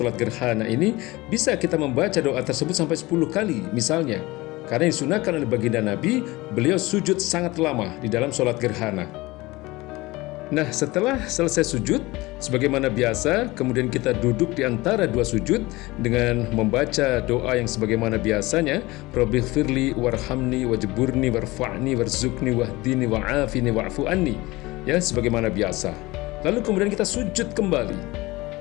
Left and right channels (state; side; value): quieter; right; 20.9 dB